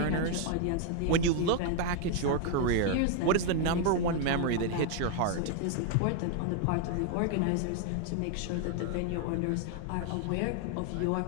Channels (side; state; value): both; different; correlation 0.01